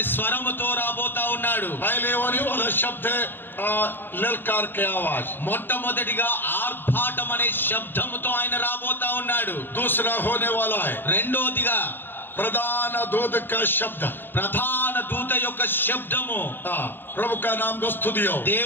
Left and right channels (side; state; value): right; late; 0.099 ms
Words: స్వరముతో రాబోతా ఉన్నాడు. पहले होने वाला शब्द है ललकार के आवाज। మొట్టమొదటిగా ఆర్భాటం అనే శబ్దముతో ఆయన రాబోతా ఉన్నాడు. दूसरा होने वाला है రెండోదిగా प्रधान दूत का शब्द, ప్రధాన దూత యొక్క శబ్దము. प्रभु का नाम को स्तुति हो.